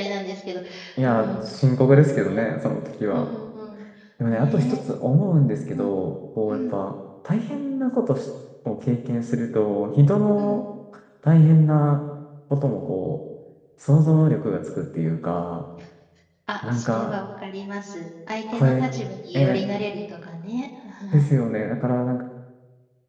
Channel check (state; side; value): identical; both; correlation 1.00